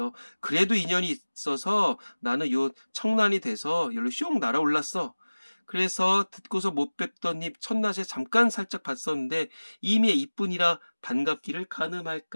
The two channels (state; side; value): inverted; both; correlation -1.00